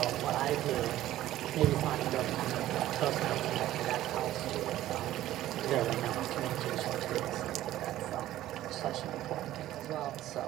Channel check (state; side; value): quieter; left; 14.1 dB